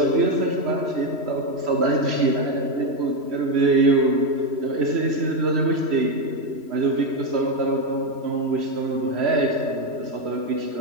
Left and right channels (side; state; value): left; late; 3.1 ms